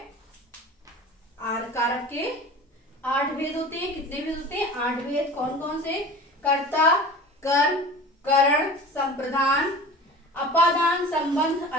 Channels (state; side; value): normal; both; correlation 0.38